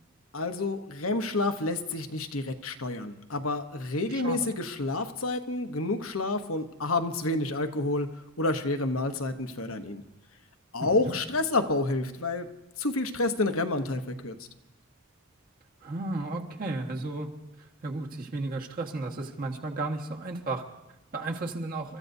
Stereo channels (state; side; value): normal; both; correlation 0.11